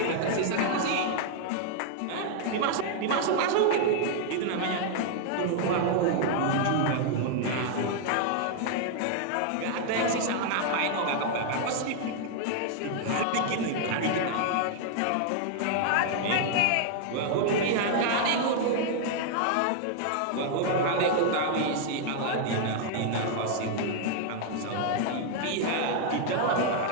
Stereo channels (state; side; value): different; both; correlation 0.00